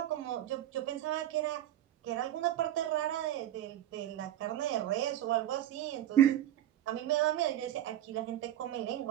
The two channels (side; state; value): left; quieter; 12.2 dB